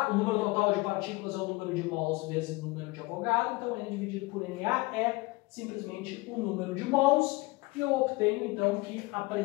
O número total de partículas é o número de mols vezes o número de Avogadro, então N dividido por Na é simplesmente o número de mols, e eu obtenho então que a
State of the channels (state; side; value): quieter; right; 23.3 dB